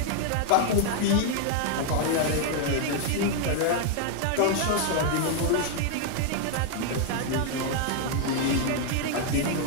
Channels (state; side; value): different; both; correlation 0.00